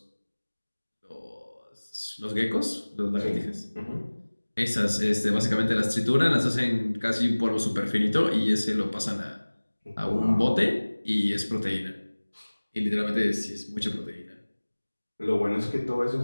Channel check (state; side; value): inverted; both; correlation -1.00